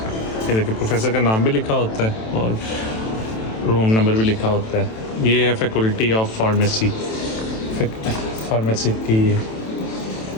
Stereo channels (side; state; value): right; late; 27 ms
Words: ये देखिए प्रोफेसर का नाम भी लिखा होता है और रूम नंबर भी लिखा होता है। ये है फैकल्टी ऑफ फार्मेसी, फार्मेसी की।